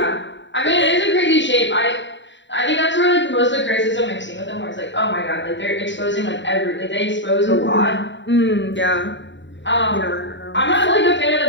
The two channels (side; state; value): right; late; 0.53 ms